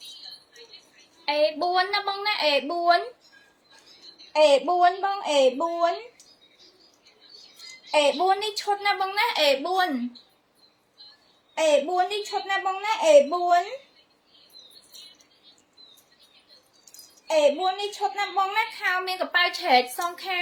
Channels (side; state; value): both; identical; correlation 1.00